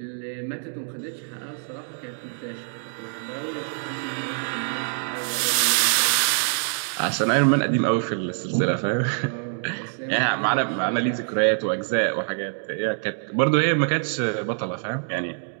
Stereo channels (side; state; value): left; silent; 62 dB below the other